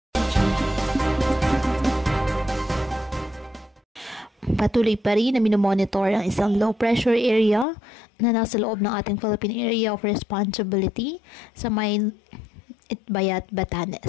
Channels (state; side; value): drops out; right; at 7.7 s